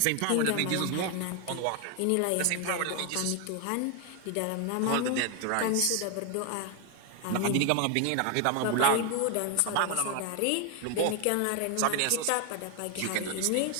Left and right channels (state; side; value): different; both; correlation 0.01